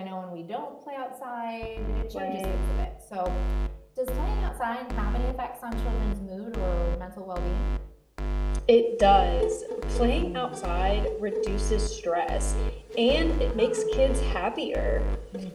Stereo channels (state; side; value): identical; both; correlation 1.00